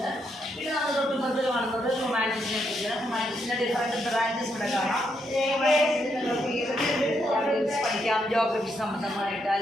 പിന്നെ നമ്മൾ തൊട്ടുപുറത്ത് കാണുന്നത് ഹ്യൂമാനിറ്റീസിനെ കുറിച്ച്. ഹ്യൂമാനിറ്റീസിൻ്റെ ഡിഫറെൻറ്റ് ബ്രാഞ്ചസ് ഇവിടെ കാണാം. പഠിക്കാം, ജോഗ്രഫി സംബന്ധമായിട്ട്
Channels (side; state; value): both; normal; correlation 0.78